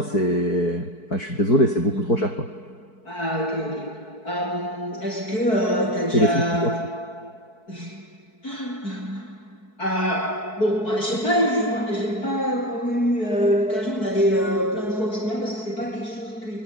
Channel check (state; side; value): late; right; 4.6 ms